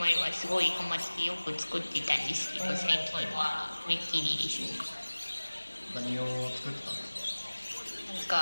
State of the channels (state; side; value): inverted; both; correlation -1.00